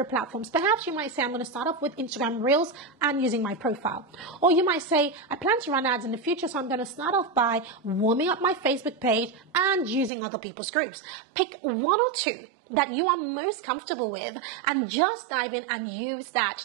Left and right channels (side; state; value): left; drops out; at 10.1 s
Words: platforms. Perhaps you might say, I'm going to start off with Instagram Reels and using my profile. Or you might say, I plan to run ads in the future, so I'm going to start off by warming up my Facebook page and using other people's groups. Pick 1 or 2 that you are most comfortable with and just dive in and use that